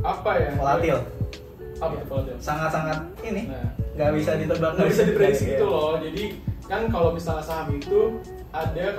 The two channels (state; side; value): identical; both; correlation 1.00